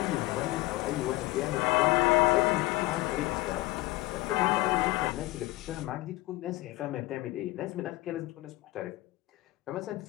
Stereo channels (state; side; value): quieter; right; 20.1 dB